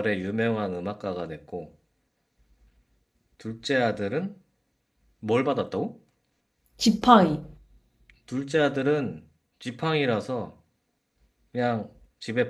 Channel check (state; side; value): identical; both; correlation 1.00